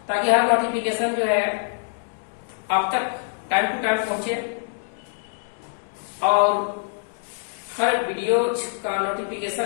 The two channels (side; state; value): right; silent; digital silence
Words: ताकि हर नोटिफिकेशन जो है आप तक टाइम टू टाइम पहुंचे और हर वीडियो का